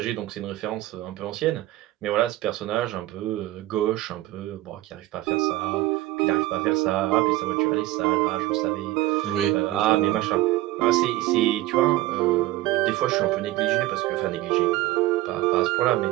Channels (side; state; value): left; quieter; 16.8 dB